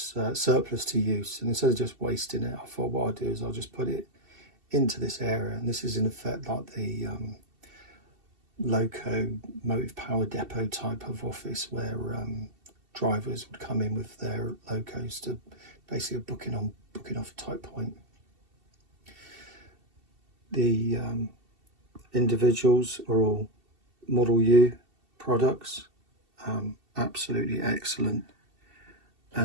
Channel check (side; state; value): left; late; 2.7 ms